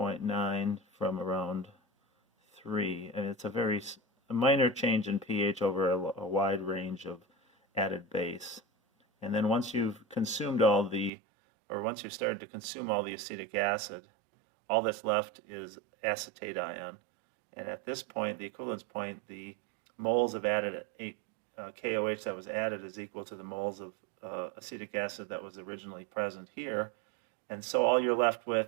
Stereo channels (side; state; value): left; drops out; at 11.1 s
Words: from around 3, and it's a minor change in pH over a wide range of added base. And then once you've started to consume all the acetic acid, all that's left is acetate ion. And at this point, the equivalence point, the moles of added KOH that was added is equal to the moles of acetic acid that was originally present here, and so all you're left with